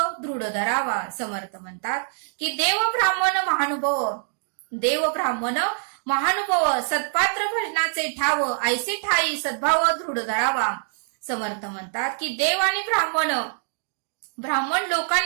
दृढ धरावा. समर्थ म्हणतात की देव ब्राह्मण महानुभाव सत्पात्र भजनाचे ठाव ऐसे ठाई सद्भाव दृढ धरावा. समर्थ म्हणतात की देव आणि ब्राह्मण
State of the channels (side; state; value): left; silent; digital silence